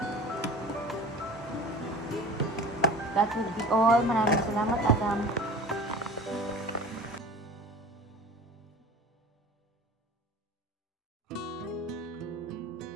That would be all. Maraming salamat, Adam.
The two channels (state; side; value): normal; both; correlation 0.39